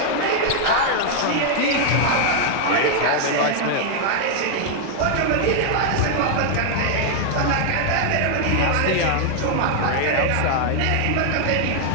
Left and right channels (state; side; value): different; both; correlation 0.00